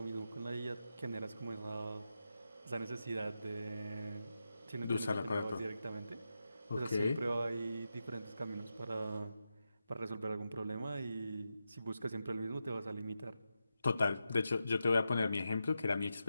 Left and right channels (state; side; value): inverted; both; correlation -0.89